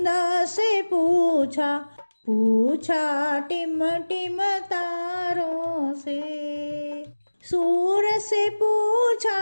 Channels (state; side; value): inverted; both; correlation -1.00